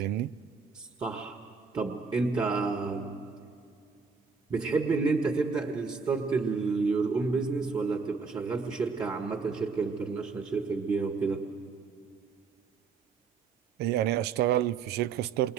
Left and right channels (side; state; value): left; quieter; 5.1 dB